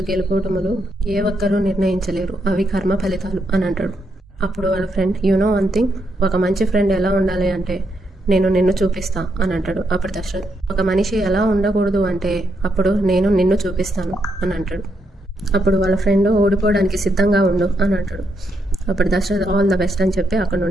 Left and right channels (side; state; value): both; normal; correlation 0.80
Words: గెలుపోటములు ఏ ఒక్కరూ నిర్ణయించలేరు, అవి కర్మ ఫలితాలు అని అంటాడు. అప్పుడు వాళ్ళ friend you know one thing, ఒక మంచి ఫ్రెండ్ ఎలా ఉండాలి అంటే నేను నిన్ను చూపిస్తా అని అంటాడు. అప్పుడు దశరథ్ ఒక మనిషి ఎలా ఉండకూడదు అంటే అప్పుడు నేను నిన్ను చూపిస్తాను అని అంటాడు. అప్పుడు వాళ్ళ ఫ్రెండ్ ఓడిపోవడానికి సిద్ధంగా ఉండు అని అంటాడు. అప్పుడు దశరథ్ ఆల్ ద బెస్ట్ అని చెప్పి అక్కడ